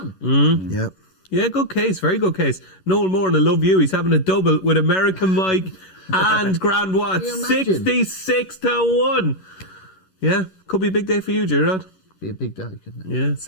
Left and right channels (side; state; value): right; late; 11 ms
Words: Yep. Yeah, good case, very good case. Noel Moore, and I love you. He's having a double with American Mike and Grand Watts. 66-1. Yeah, could be a big day for you, Gerard. Be a big day, couldn't it? Yeah,